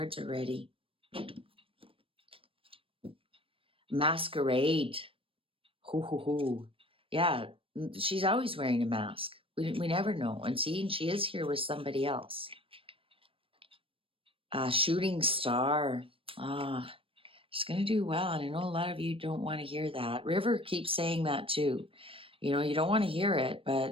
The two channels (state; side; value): late; left; 0.26 ms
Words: are ready. Masquerade. Hoo hoo hoo. Yeah, she's always wearing a mask. We never know. And she is here with somebody else. Shooting star. She's going to do well. And I know a lot of you don't want to hear that. River keeps saying that too. You know, you don't want to hear it,